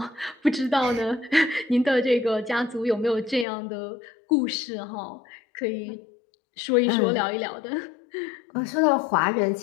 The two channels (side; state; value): right; drops out; at 3.5 s